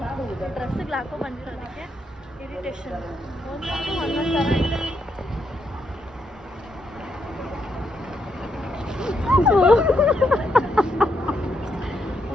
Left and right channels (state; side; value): normal; both; correlation 0.79